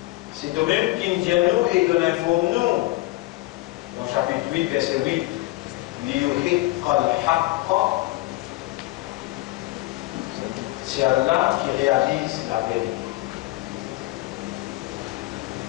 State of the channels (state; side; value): quieter; right; 19.8 dB